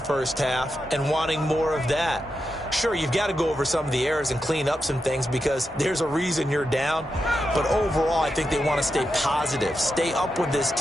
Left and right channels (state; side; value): normal; both; correlation 0.87